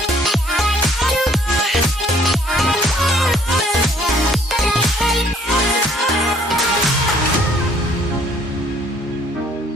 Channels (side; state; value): both; normal; correlation 0.61